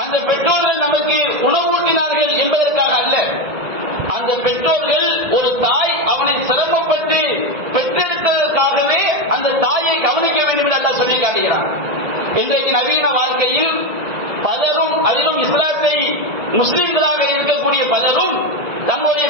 அந்த பெற்றோர்கள் நமக்கு உணவூட்டினார்கள் என்பதற்காக அல்ல. அந்த அந்த பெற்றோர்கள் ஒரு தாய் அவனை சிரமப்பட்டு பெற்றெடுத்ததற்காகவே அந்த தாயை கவனிக்க வேண்டும் என்று அல்லாஹ் சொல்லி காட்டுகிறான். இன்றைக்கு நவீன வாழ்க்கையில் பலரும், அதிலும் இஸ்லாத்தை முஸ்லிம்களாக இருக்கக்கூடிய பலரும் தங்களுடைய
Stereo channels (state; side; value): late; left; 1.7 ms